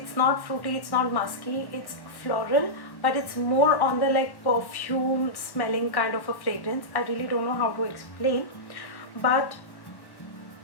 not fruity, it's not musky, it's floral, but it's more on the like perfume smelling kind of a fragrance. I really don't know how to explain, but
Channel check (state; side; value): late; right; 1.1 ms